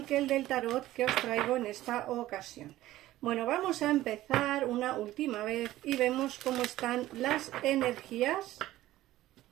que el del tarot que os traigo en esta ocasión. Bueno, vamos a empezar una última vez y vemos cómo están las energías.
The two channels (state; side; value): quieter; left; 15.3 dB